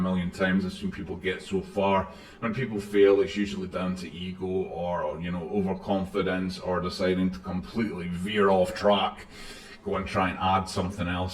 times. I've seen people get so far. When people fail, it's usually down to ego or you know, overconfidence, or deciding to completely veer off track, go and try and add something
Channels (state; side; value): identical; both; correlation 1.00